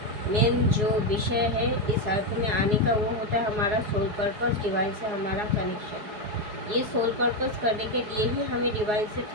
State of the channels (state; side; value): late; left; 4.8 ms